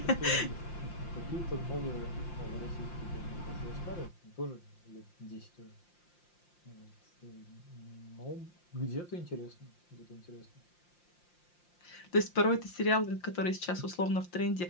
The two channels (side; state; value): right; late; 5.7 ms